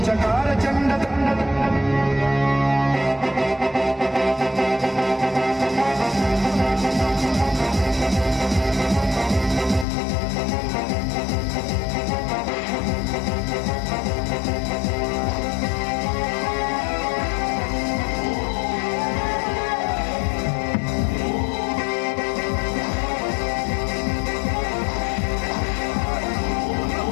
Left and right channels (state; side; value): drops out; right; at 9.9 s